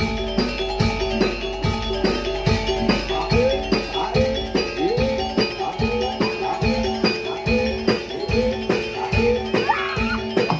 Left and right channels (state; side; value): identical; both; correlation 1.00